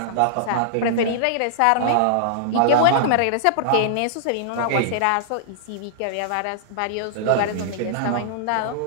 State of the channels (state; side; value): different; both; correlation -0.02